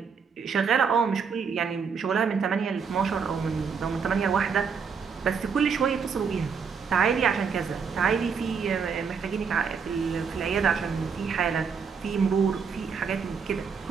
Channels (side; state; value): left; quieter; 6.0 dB